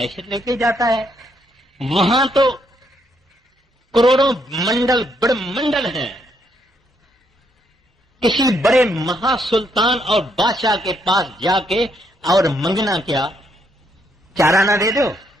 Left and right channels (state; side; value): normal; both; correlation 0.74